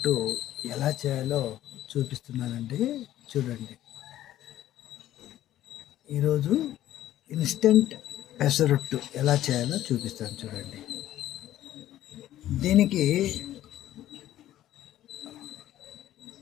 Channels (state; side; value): quieter; right; 13.2 dB